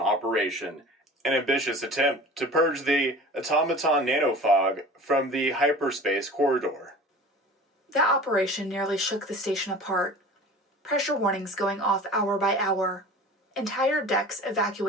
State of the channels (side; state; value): both; normal; correlation 0.40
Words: an ambitious attempt to purge the automaton nanofog from the hyperspace corridor. That operation nearly shook the station apart. Pressure warnings going off hour by hour. Entire decks